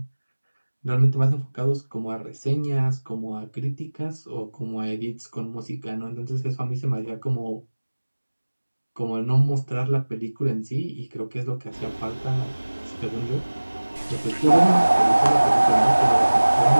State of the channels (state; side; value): inverted; both; correlation -1.00